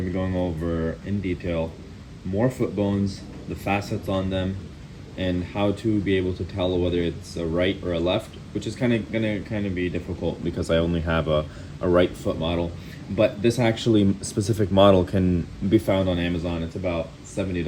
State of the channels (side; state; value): both; identical; correlation 1.00